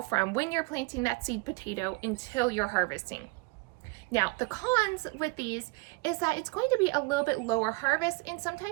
when you're planting that seed potato until you're harvesting. Now, the cons with these is that it's going to be a little bit lower harvest, and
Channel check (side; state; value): left; quieter; 27.2 dB